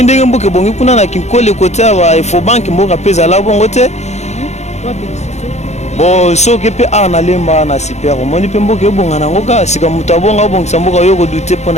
ndenge mboke bongi kuna na kinkole côté wa ifo bank mboka pesa la bongo te bon soki pe ana lemba na super moni pe mboke bonga na ngoka sika mutu abonga bongisa mboka yo ko douter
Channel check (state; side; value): late; right; 0.33 ms